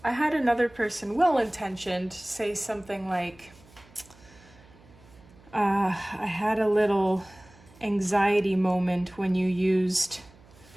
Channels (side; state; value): right; noise; hum, 26 dB below the sound